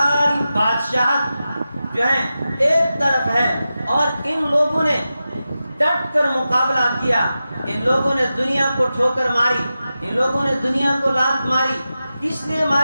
بادشاہت جو ہے ایک طرف ہے، اور ان لوگوں نے ڈٹ کر مقابلہ کیا. ان لوگوں نے دنیا کو ٹھوکر ماری، ان لوگوں نے دنیا کو لات ماری. کس لیے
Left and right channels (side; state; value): both; inverted; correlation -0.92